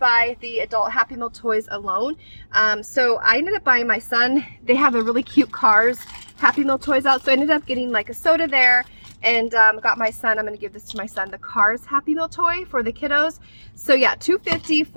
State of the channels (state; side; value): inverted; both; correlation -1.00